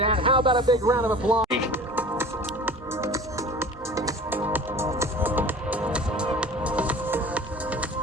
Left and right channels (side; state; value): both; normal; correlation 0.41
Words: How about a big round of applause?